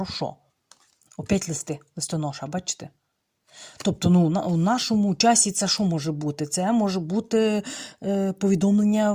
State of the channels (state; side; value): identical; both; correlation 1.00